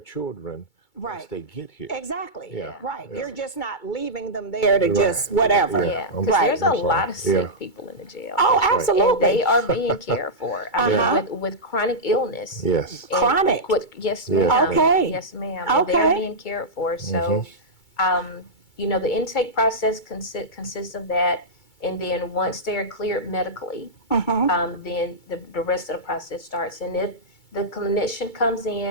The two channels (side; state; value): right; late; 2.3 ms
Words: once they get here. Exactly. Yeah. Right. Yeah. You're just not leaving them there to just whatever. Yeah, because Right. there's a lot of sick people in the jail. Oh, That's right. absolutely. And they are being cared for. I mean, with chronic illness. Yes. And Chronic? Yes, Yeah. ma'am. Okay. Yes, ma'am. And Okay. they're being cared for. So, the intake process consists of that. And then once they're cleared medically, then the rest of the process starts. And if the clinician comes